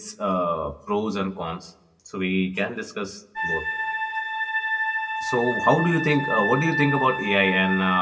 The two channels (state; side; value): identical; both; correlation 1.00